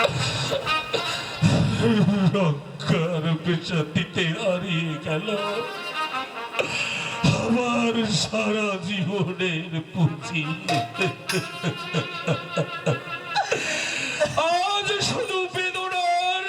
রক্ষার পেশাতিতে হারিয়ে গেল আমার সারা জীবনের পুঁজি। আজ শুধু বেদনার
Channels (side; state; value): both; identical; correlation 1.00